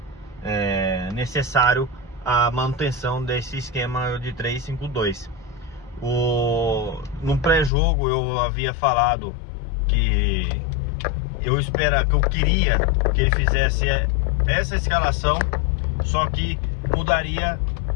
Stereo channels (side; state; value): right; drops out; at 7.7 s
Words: necessário a manutenção desse esquema de 3-5-2. No pré-jogo eu havia falado que eu queria que ele fizesse essa escalação, só que mudaria